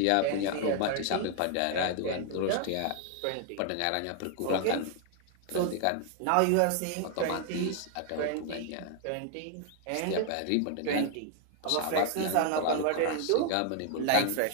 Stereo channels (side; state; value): both; different; correlation 0.00